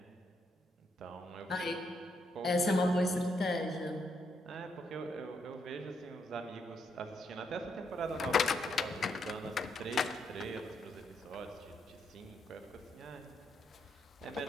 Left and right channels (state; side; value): normal; both; correlation 0.78